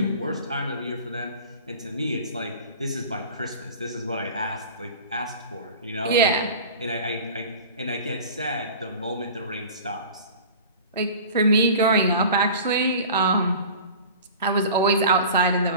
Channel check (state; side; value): inverted; both; correlation -0.39